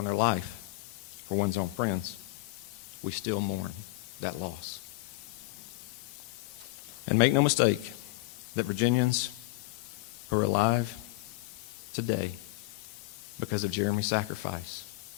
their life for one's own friends, we still mourn that loss. And make no mistake that Virginians who are alive today because of Jeremy's sacrifice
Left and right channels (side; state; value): right; quieter; 21.4 dB